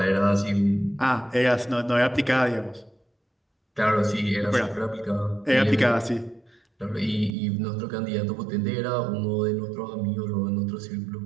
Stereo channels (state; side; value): drops out; left; at 7.4 s